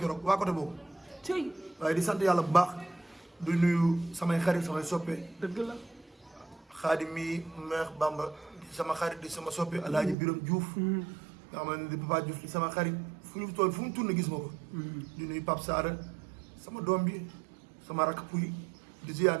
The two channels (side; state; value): left; drops out; at 10.2 s